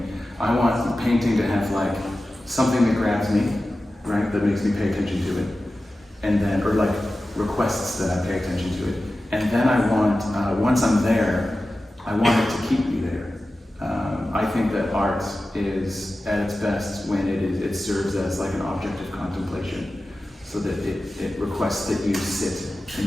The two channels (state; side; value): normal; both; correlation 0.94